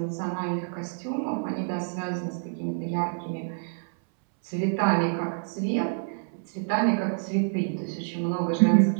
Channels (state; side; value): silent; left; 60 dB below the other